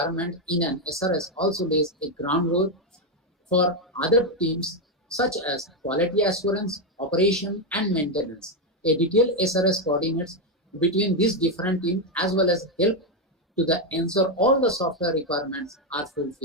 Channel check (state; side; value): normal; both; correlation 0.05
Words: in an SRS also lays a groundwork for other teams such as quality assurance, operation, and maintenance. A detailed SRS coordinates between these different teams as well as help to ensure all the software requirements are